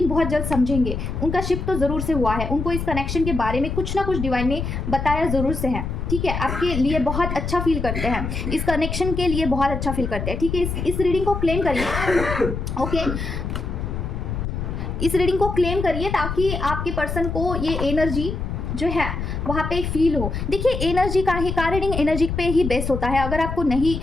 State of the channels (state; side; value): noise; left; rumble, 4 dB below the sound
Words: बहुत जल्द समझेंगे, उनका शिफ्ट तो ज़रूर से हुआ है, उनको इस कनेक्शन के बारे में कुछ ना कुछ डिवाइन ने बताया ज़रूर से है, ठीक है, आपके लिए बहुत अच्छा फील करते हैं, इस कनेक्शन के लिए बहुत अच्छा फील करते हैं, ठीक है। इस रीडिंग को क्लेम करिए। ओके, इस रीडिंग को क्लेम करिए ताकि आपके पर्सन को ये एनर्जी जो है वहाँ पे फील हो। देखिए एनर्जी का रीडिंग एनर्जी पे ही बेस होता है, अगर आपको नहीं